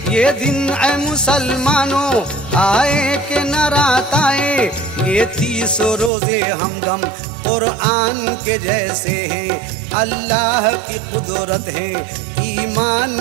ये दिन ऐ मुसलमानों आए कि न रात आए। ये 30 रोजे हमदम कुरान के जैसे हैं, अल्लाह की कुदरत है ईमान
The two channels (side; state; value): left; drops out; at 6.1 s